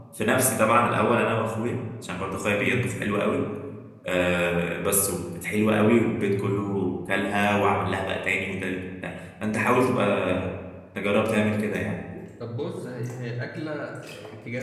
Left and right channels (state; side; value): identical; both; correlation 1.00